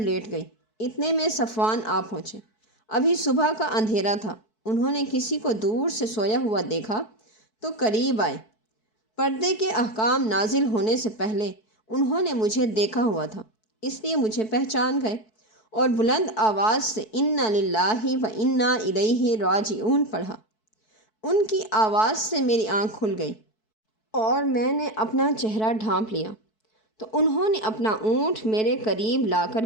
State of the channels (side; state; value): right; late; 4.6 ms